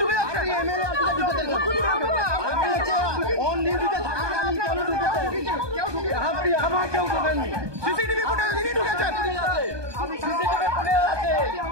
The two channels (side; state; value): left; late; 1.2 ms